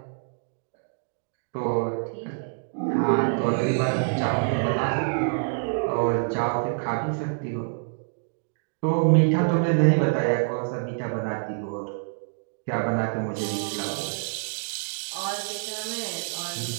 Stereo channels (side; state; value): left; silent; digital silence